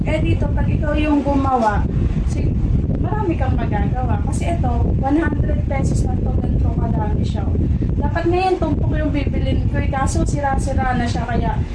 Eh dito, pag ikaw yung gumawa, marami kang magagawa. Kasi ito, 100 pesos na ito, ganito kadami siya. Dapat ngayon, tumpok yung bibilin ko. Kaso sira-sira na siya. Kaya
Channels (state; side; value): identical; both; correlation 1.00